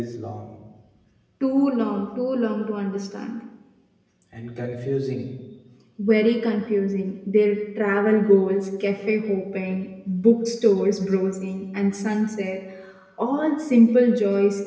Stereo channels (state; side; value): identical; both; correlation 1.00